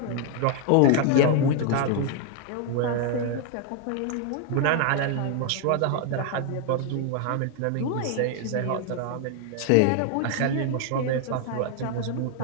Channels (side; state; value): both; different; correlation 0.00